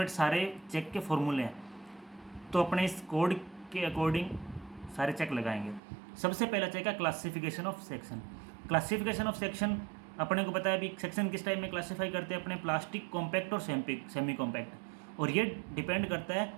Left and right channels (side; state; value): left; drops out; at 5.8 s